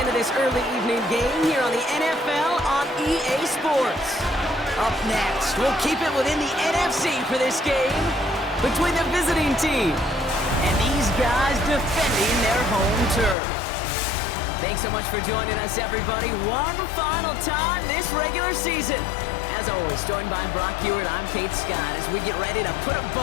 of this early evening game here on the NFL on EA Sports. Up next, we'll keep it within the NFC for this game between the visiting team and these guys defending their home turf. Thanks so much for joining us, everybody. One final time this regular season. As always, joined by Brock Hewitt, I'm Kate Scott as we get ready to put a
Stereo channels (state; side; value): drops out; right; at 13.4 s